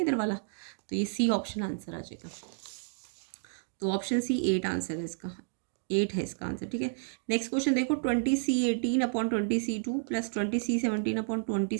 वाला, तो ये सी ऑप्शन आंसर आ जाएगा। तो ऑप्शन सी 8 आंसर है इसका, 8 है इसका आंसर, ठीक है। नेक्स्ट क्वेश्चन देखो, 20C18/20C2 +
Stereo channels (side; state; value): left; silent; digital silence